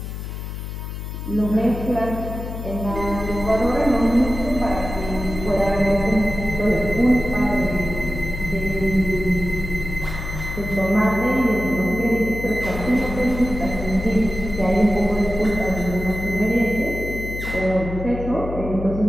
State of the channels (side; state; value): left; noise; hum, 7 dB below the sound